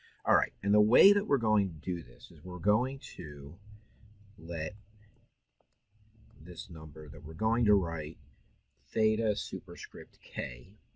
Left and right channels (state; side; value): identical; both; correlation 1.00